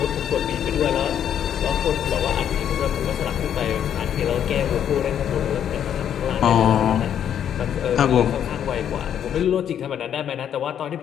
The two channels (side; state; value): right; quieter; 9.4 dB